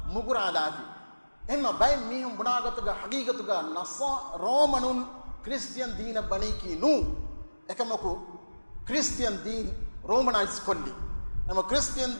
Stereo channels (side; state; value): both; inverted; correlation -1.00